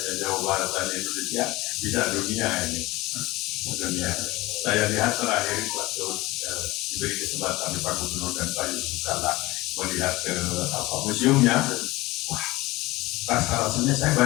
Jawa Barat dan Indonesia, bisa dunia ini. Dunia. Saya lihat terakhir waktu diberi kesempatan di Pak Gubernur dan Pak Yusuf Kala melihat ke museumnya. Wah, rasa-rasanya saya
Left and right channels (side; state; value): right; quieter; 20.2 dB